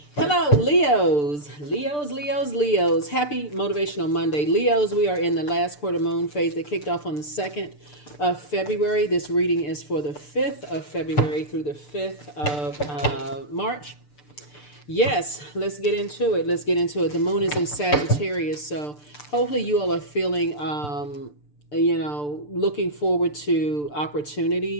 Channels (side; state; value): right; late; 6.8 ms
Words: Hello, Leos. Leos. Happy Motivational Monday. Leos, we are in the last quarter moon phase that kicked off on the 2nd of February. This reading is for the 5th of February through the 5th of March. Yes, let's get into it. The moon is in Sagittarius, so hopefully you all are feeling looking forward to